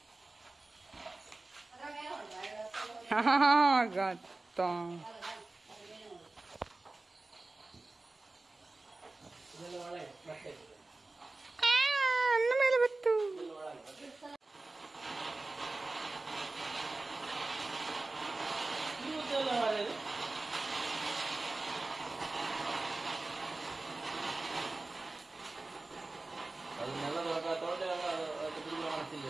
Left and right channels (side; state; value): left; quieter; 3.2 dB